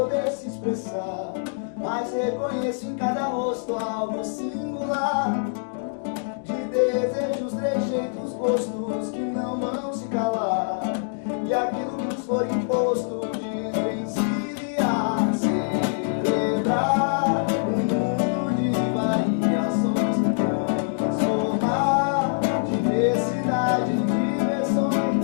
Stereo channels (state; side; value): silent; right; digital silence